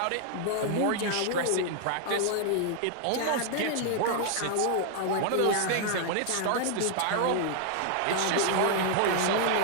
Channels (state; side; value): different; both; correlation 0.00